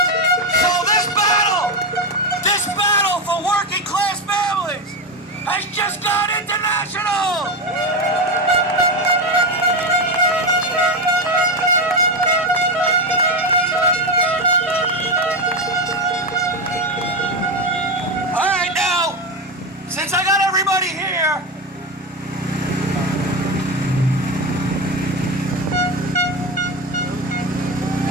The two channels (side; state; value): both; normal; correlation 0.14